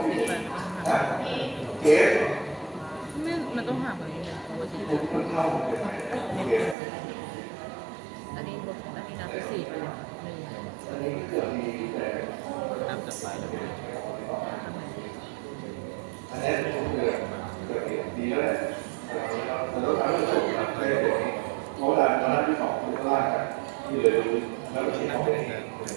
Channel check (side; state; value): left; drops out; at 6.8 s